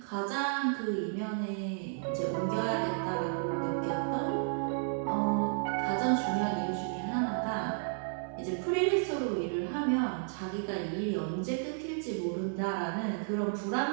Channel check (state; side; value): silent; left; digital silence